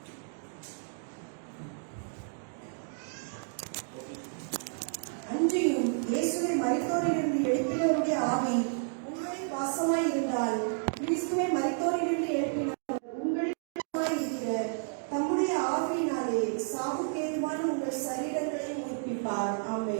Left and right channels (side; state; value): left; silent; digital silence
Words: அன்றியும் இயேசுவை மரித்தோரிலிருந்து எழுப்பினவருடைய ஆவி உங்களில் வாசமாய் இருந்தால் கிறிஸ்துவை மரித்தோரிலிருந்து எழுப்பினவர் உங்களில் வாசமாய் இருக்கிற தம்முடைய ஆவியினாலே சாவுக்கேதுவான உங்கள் சரீரங்களை உயிர்ப்பிப்பார்.